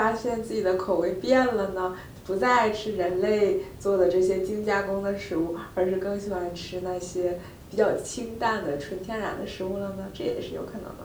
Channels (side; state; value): both; identical; correlation 1.00